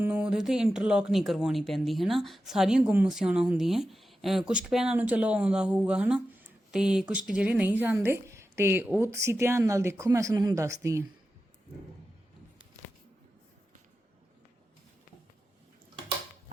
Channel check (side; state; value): both; normal; correlation 0.91